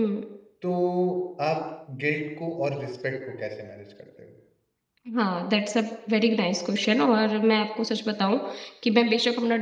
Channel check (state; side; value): identical; both; correlation 1.00